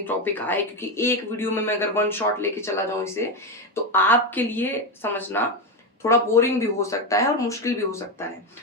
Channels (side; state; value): both; normal; correlation 0.12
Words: टॉपिक आए, क्योंकि एक वीडियो में मैं अगर वन शॉट लेके चला जाऊं इसे तो आपके लिए समझना थोड़ा बोरिंग भी हो सकता है और मुश्किल भी हो सकता है।